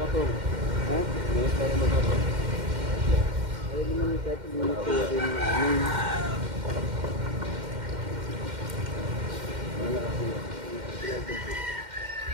Ha? Minit tayo mag-apong. Ayaw naman kahit minit ko rin ng amin.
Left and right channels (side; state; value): left; late; 2.1 ms